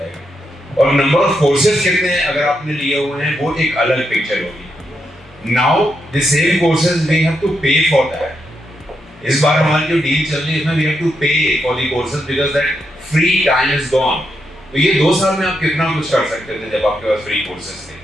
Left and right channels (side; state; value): both; normal; correlation 0.82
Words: और नंबर ऑफ कोर्सेज कितने अगर आपने लिए हुए हैं वो एक अलग पिक्चर होगी। Now the same courses we have to pay for that. इस बार हमारी जो डील चल रही है इसमें we have to pay for the courses because that free time is gone. तो ये 2 साल में आप कितना कुछ कर सकते थे जब आपके पास फ्री कोर्सेज थे।